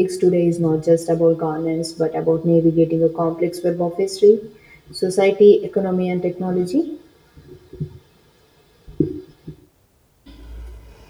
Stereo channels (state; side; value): identical; both; correlation 1.00